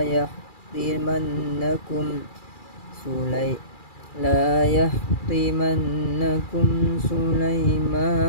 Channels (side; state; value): right; late; 2.4 ms